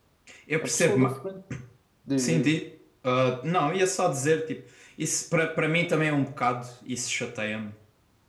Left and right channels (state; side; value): identical; both; correlation 1.00